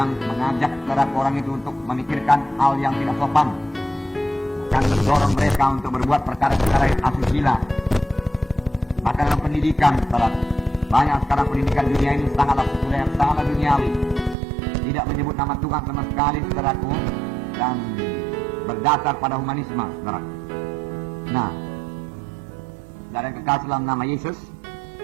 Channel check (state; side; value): drops out; left; at 14.4 s